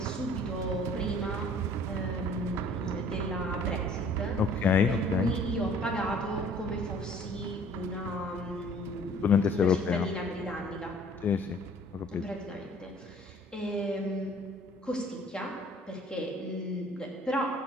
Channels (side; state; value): both; normal; correlation 0.54